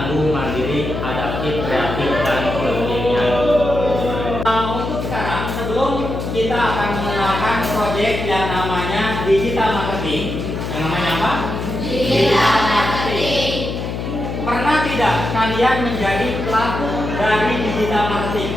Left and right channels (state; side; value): noise; left; hum, 5 dB below the sound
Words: mandiri, adaptif, kreatif, dan kekinian. Untuk sekarang, sebelum kita akan mengenalkan proyek yang namanya digital marketing, yang namanya apa? Digital marketing. Pernah tidak kalian menjadi pelaku dari digital